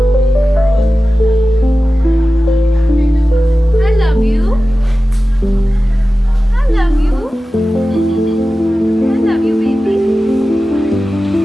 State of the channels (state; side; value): normal; both; correlation 0.95